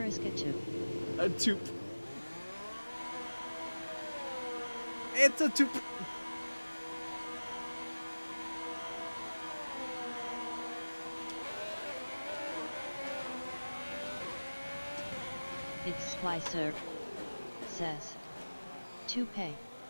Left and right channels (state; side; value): inverted; both; correlation -1.00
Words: a 2. A toop. It's a toop. It's Splicer. Says. Toupee.